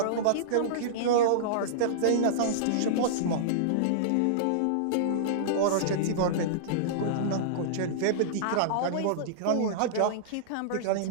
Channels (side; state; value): both; different; correlation -0.02